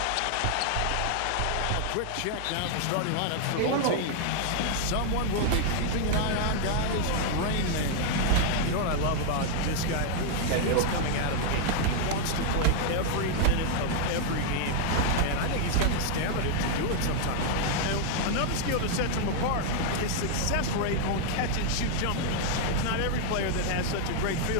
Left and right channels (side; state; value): both; different; correlation 0.00